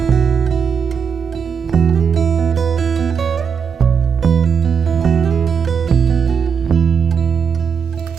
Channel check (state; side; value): quieter; left; 6.6 dB